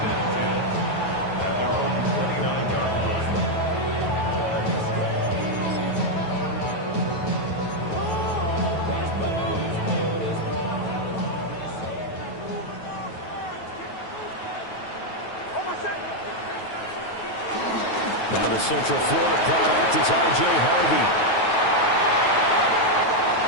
Now the Central Florida product is R.J. Harvey.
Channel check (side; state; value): right; late; 9.3 ms